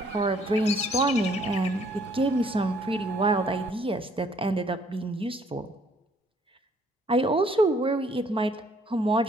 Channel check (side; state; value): both; normal; correlation 0.63